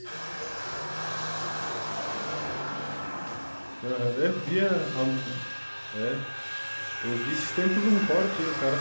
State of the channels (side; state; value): both; inverted; correlation -1.00